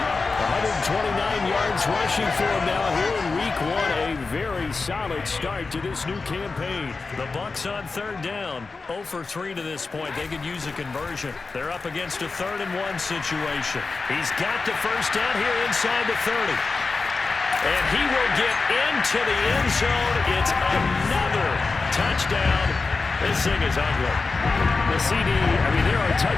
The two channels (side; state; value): right; quieter; 4.1 dB